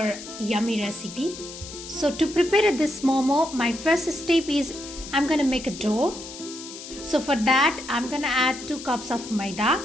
yummy recipe. So to prepare this Momo, my first step is I'm gonna make a dough. So for that I'm gonna add 2 cups of maida,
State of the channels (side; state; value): left; noise; hiss, 13 dB below the sound